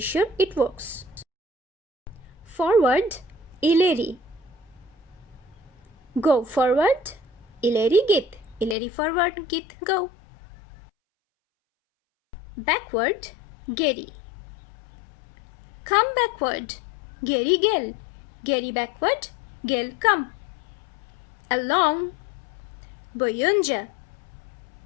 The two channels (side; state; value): right; drops out; at 8.8 s